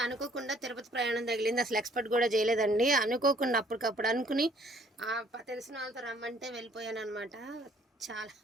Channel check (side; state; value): both; normal; correlation 0.60